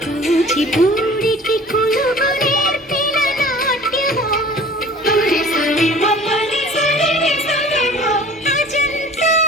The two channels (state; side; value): normal; both; correlation 0.46